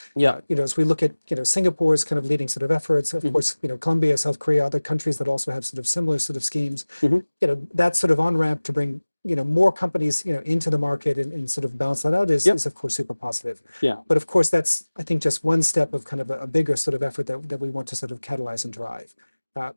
Yeah. As we look at, Singapore's kind of leading sort of efforts, of course, Colombia, South Korea, other countries that also have sort of similar sort of schemes, that sort of on-ramp to bring, more companies, into the market and sort of balance that out is of course super positive. Yeah. But of course, that's, I think, just one step of kind of a bigger sort of effort that we want to sort of catalyze and drive.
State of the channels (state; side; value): inverted; both; correlation -1.00